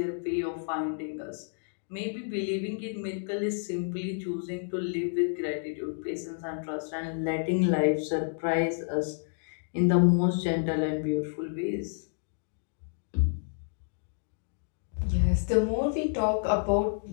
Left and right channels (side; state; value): right; silent; digital silence